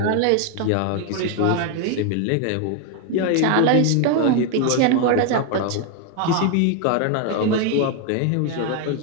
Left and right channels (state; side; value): different; both; correlation 0.01